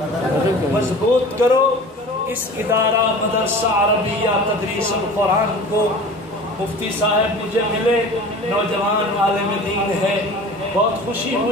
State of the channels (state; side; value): normal; both; correlation 0.40